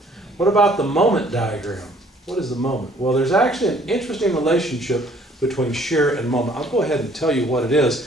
What about the moment diagram? What is the moment? Well, there's actually an interesting relationship between shear and moment. I'll go ahead and tell you what it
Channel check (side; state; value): both; normal; correlation 0.59